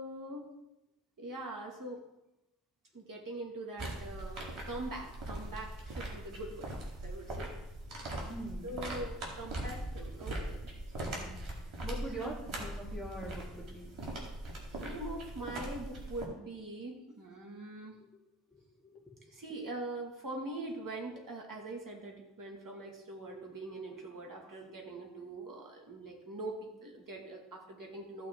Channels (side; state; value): both; normal; correlation 0.46